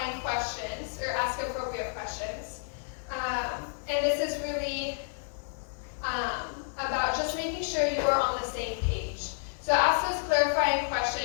questions, or ask appropriate questions. And this is really about just making sure you are on the same page. So ask those clarifying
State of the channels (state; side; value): silent; right; digital silence